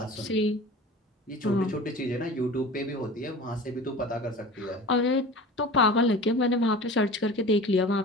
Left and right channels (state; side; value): normal; both; correlation 0.37